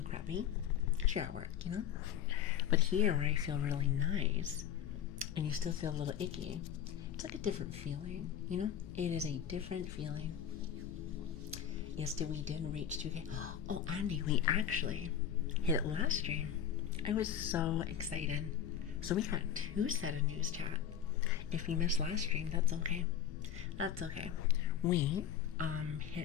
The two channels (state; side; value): quieter; right; 9.2 dB